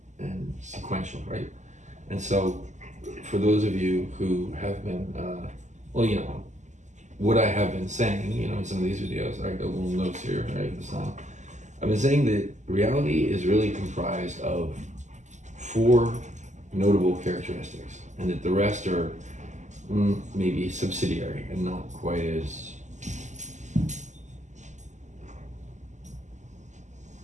and sequential, right? And so for those of you who have been, well, you know, what I have been saying, you know, in some of these videos, I got little notes here, right, this time. I've been saying that reality is really comprised of 4 notable characteristics, and that the rest are maybe subsidiary and not quite as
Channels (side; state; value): left; late; 0.34 ms